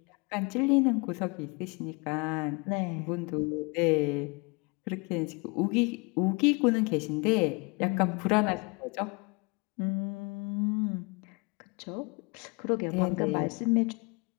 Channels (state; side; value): quieter; right; 30.1 dB